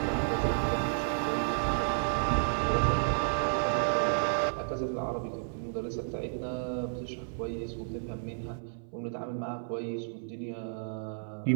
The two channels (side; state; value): left; silent; 57 dB below the other